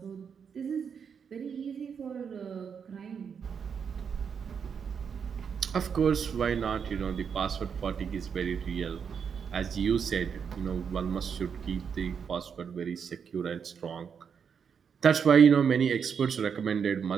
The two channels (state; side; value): quieter; left; 6.8 dB